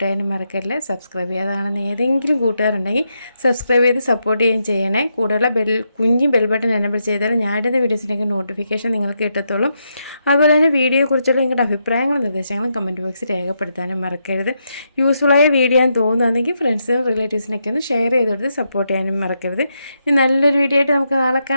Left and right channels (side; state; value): both; inverted; correlation -0.82